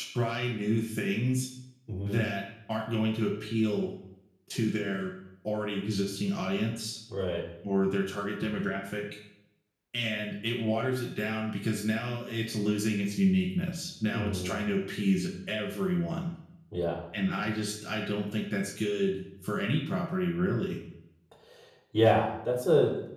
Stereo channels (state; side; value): identical; both; correlation 1.00